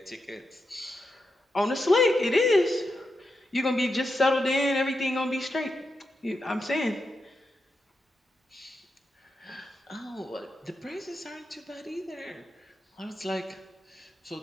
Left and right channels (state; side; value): normal; both; correlation 0.86